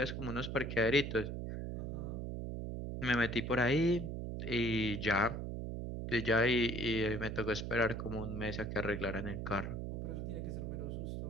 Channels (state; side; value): noise; right; hum, 4 dB below the sound